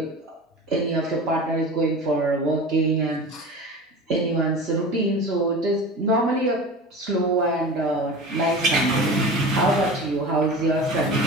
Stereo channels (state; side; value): normal; both; correlation 0.33